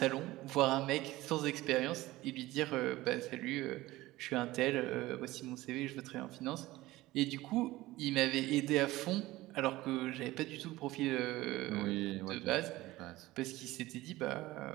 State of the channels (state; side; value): quieter; left; 18.0 dB